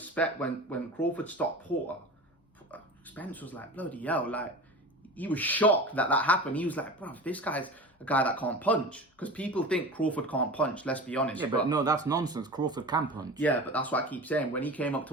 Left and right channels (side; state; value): both; normal; correlation 0.33